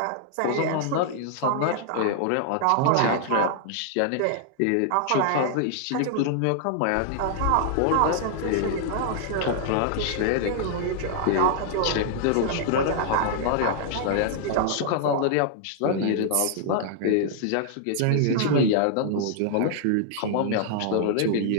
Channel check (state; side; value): different; both; correlation -0.01